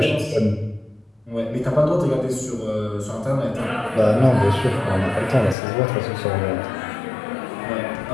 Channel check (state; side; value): drops out; right; at 5.6 s